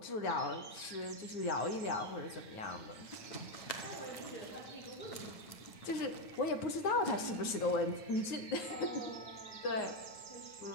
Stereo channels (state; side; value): late; right; 9.5 ms